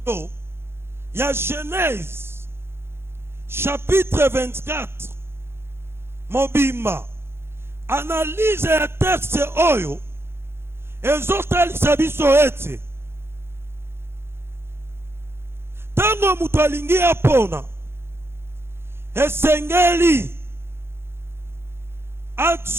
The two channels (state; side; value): late; left; 0.12 ms